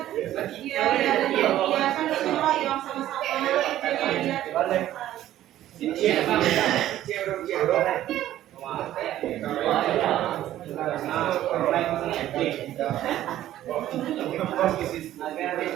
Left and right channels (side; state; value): left; quieter; 13.1 dB